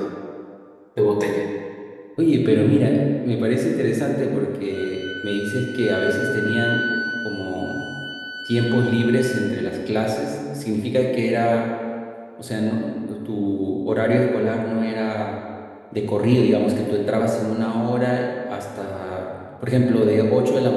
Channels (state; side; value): identical; both; correlation 1.00